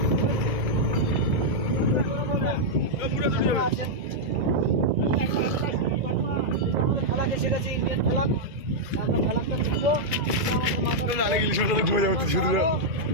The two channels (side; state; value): left; late; 2.0 ms